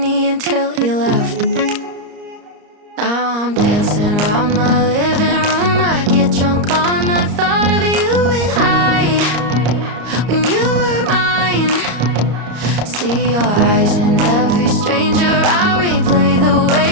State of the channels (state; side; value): late; left; 34 ms